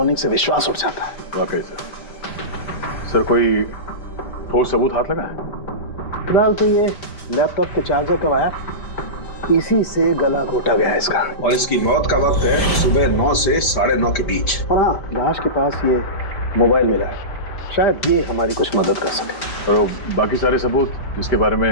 से विश्वास उठ जाता है। वाकई सर कोई ठोस सबूत हाथ लगा है? फिलहाल तो ये लैपटॉप के चार्जर का वायर, इसी से गला घोटा गया है इसका। और इसकी मौत का वक्त है सुबह 9 से 9:30 के बीच। और हाँ, लाश के पास ये मोबाइल मिला है, शायद ये हमारी कुछ मदद कर सके। और बाकी सारे सबूत जिसके बारे में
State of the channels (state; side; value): late; right; 5.0 ms